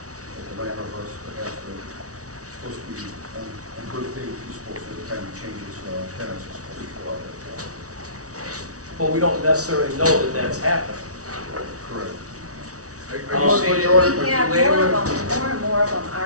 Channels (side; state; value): left; late; 0.66 ms